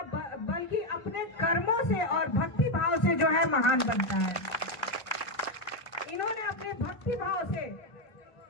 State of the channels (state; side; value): late; right; 1.5 ms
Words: बल्कि अपने कर्मों से और भक्ति भाव से जो है महान बनता है। इन्होंने अपने भक्ति भाव से